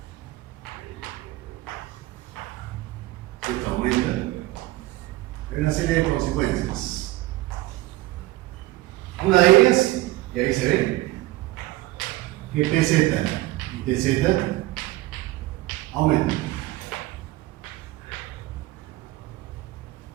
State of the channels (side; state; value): left; quieter; 18.0 dB